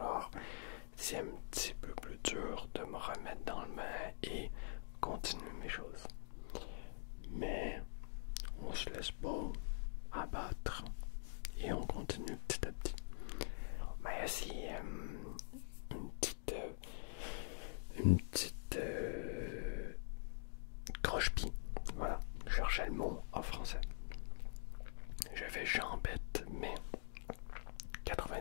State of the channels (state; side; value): silent; right; digital silence